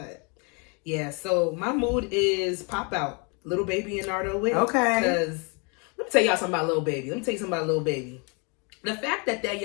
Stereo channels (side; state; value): right; quieter; 33.3 dB